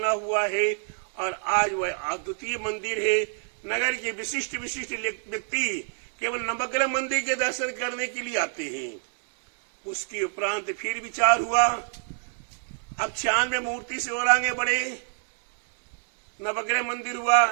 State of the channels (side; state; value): left; silent; digital silence